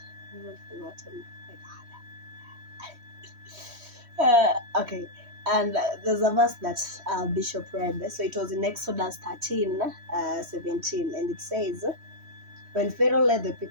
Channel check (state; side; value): late; left; 3.1 ms